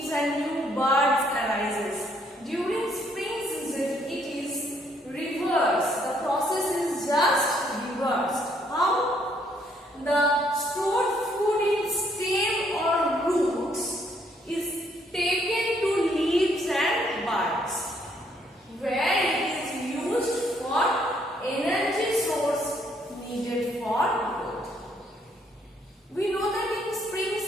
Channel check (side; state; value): both; normal; correlation 0.69